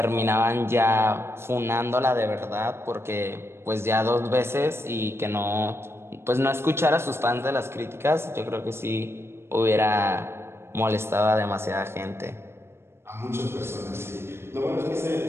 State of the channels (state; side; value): late; left; 0.12 ms